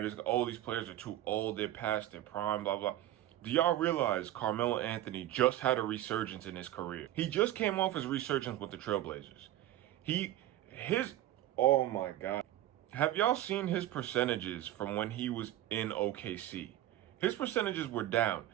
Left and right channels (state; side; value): quieter; left; 13.7 dB